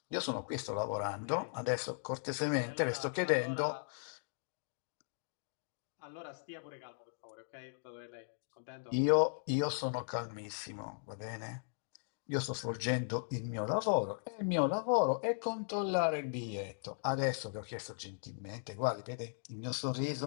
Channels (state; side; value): silent; right; digital silence